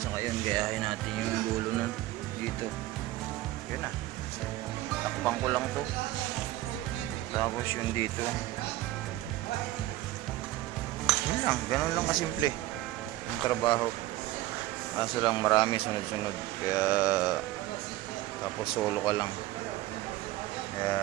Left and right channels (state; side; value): quieter; left; 16.3 dB